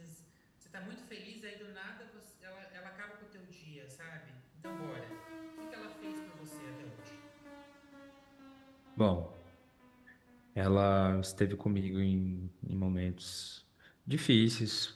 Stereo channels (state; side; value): identical; both; correlation 1.00